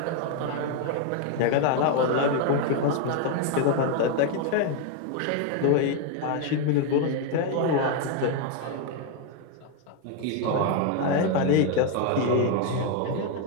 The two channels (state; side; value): different; both; correlation 0.01